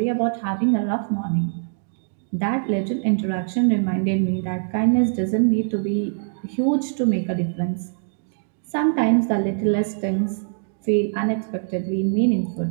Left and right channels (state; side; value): silent; left; digital silence